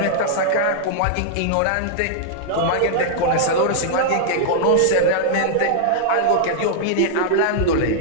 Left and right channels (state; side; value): different; both; correlation -0.01